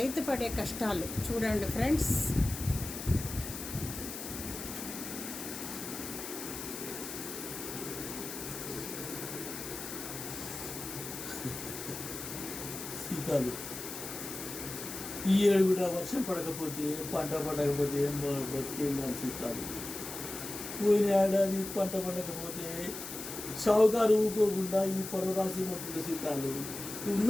పడే కష్టాలు చూడండి ఫ్రెండ్స్. సీతాలు ఈ ఏడు కూడా వర్షం పడకపోతే, పంట పడకపోతే బతికేం సీతాలు. పోయిన ఏడాది పంట పడకపోతే షావుకారు ఊకోకుండా ఈ పొలం రాసి మొత్తం సీతాలు. ఉన్న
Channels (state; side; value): noise; left; hiss, 8 dB below the sound